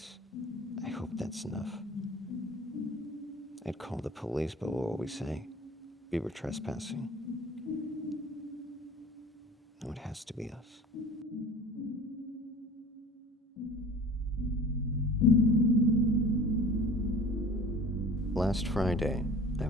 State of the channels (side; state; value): both; normal; correlation 0.43